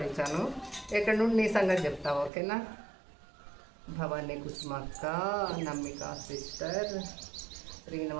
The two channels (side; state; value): left; drops out; at 2.3 s